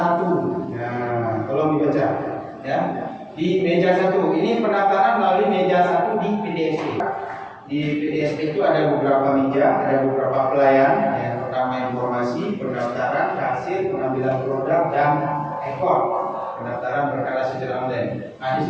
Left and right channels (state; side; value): identical; both; correlation 1.00